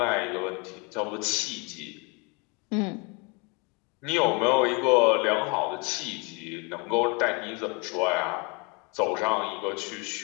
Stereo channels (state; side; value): quieter; right; 30.5 dB